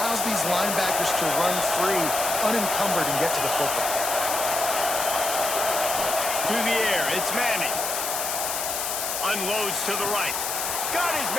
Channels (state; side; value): noise; left; hiss, 2 dB below the sound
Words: these linebackers to run free, unencumbered, and get to the football. To the air, it's Manning. Unloads to the right. Got his